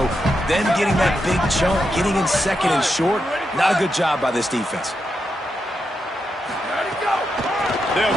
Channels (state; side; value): normal; both; correlation 0.85